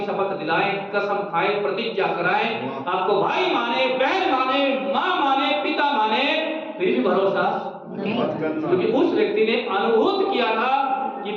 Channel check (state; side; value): identical; both; correlation 1.00